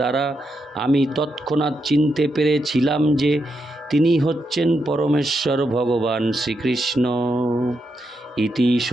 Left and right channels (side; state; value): both; normal; correlation 0.83